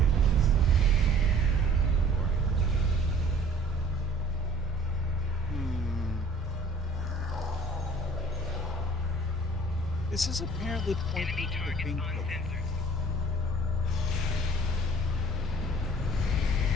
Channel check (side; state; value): both; normal; correlation 0.52